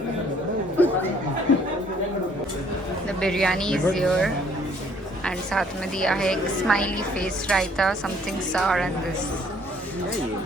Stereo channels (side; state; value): both; normal; correlation 0.61